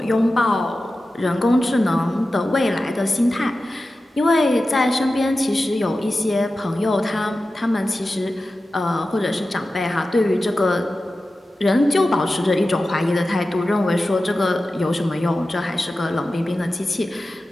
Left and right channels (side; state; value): both; normal; correlation 0.94